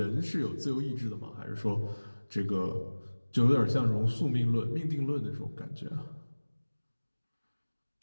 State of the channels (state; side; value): inverted; both; correlation -1.00